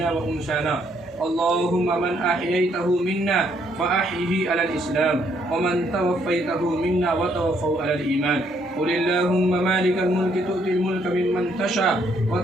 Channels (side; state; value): both; normal; correlation 0.70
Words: व उन्साना। अल्लाहुम्मा मन अह्यैतहु मिन्ना फ़अह्यिही अलल इस्लाम व मन तवफ़्फ़ैतहु मिन्ना व तवफ़्फ़हु अलल ईमान। क़ुल अल्लाहुम्मा मालिकल मुल्क तु'तिल मुल्क मिम्मन तशा व